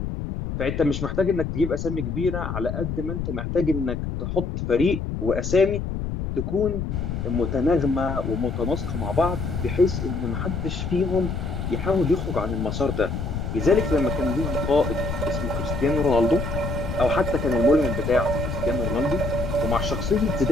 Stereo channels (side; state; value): left; noise; rumble, 4 dB below the sound